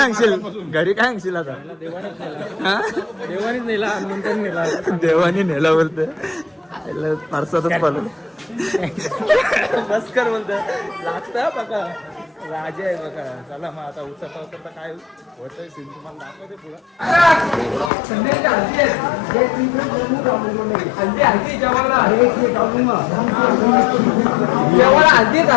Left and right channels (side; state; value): right; drops out; at 17.9 s